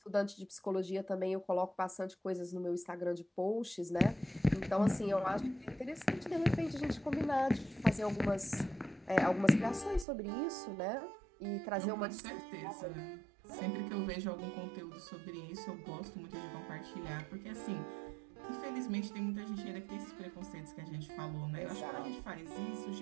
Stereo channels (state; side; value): drops out; left; at 10.1 s